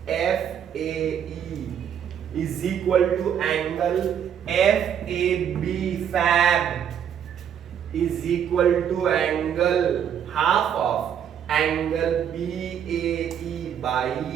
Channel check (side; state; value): left; quieter; 8.8 dB